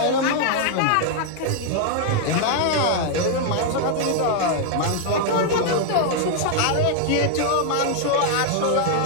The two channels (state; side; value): different; both; correlation 0.00